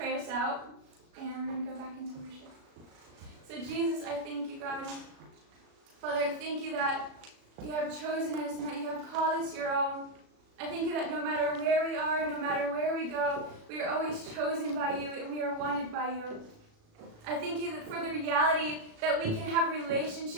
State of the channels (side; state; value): left; late; 37 ms